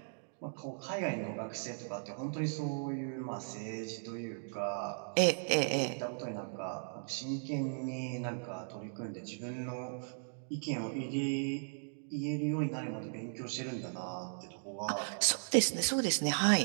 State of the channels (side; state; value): left; silent; digital silence